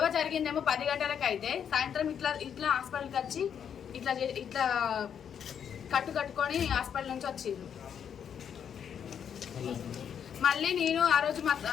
జరిగిందేమో 10 గంటలకు. అయితే సాయంత్రం ఇట్లా హాస్పిటల్కి వచ్చి ఇట్లా కట్టుకొని హాస్పిటల్ నుంచి వచ్చిండ్రు. మళ్ళీ నేను ఆ రోజు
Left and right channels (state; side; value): quieter; right; 8.2 dB